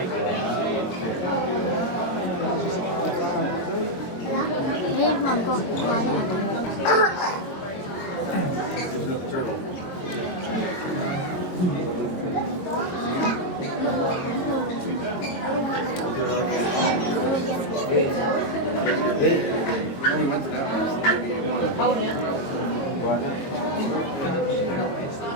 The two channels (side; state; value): right; late; 22 ms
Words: Ayan, ma'am ko. Kuha na ako. There's another turtle. We went to that one. Maybe one.